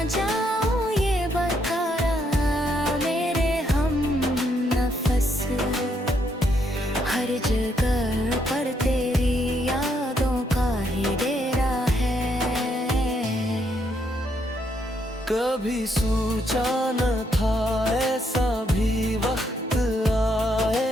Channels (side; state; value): both; normal; correlation 0.75